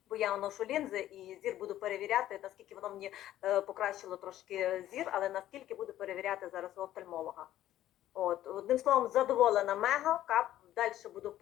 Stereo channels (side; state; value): right; quieter; 13.1 dB